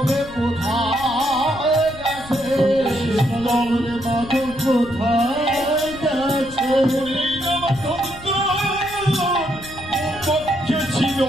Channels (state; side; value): noise; left; rumble, 17 dB below the sound